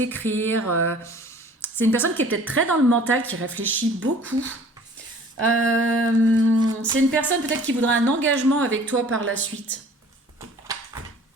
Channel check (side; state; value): both; normal; correlation 0.50